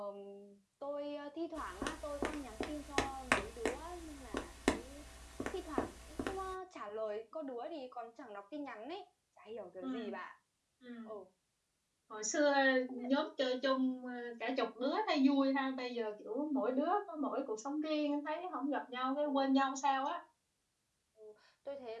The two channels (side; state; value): both; identical; correlation 1.00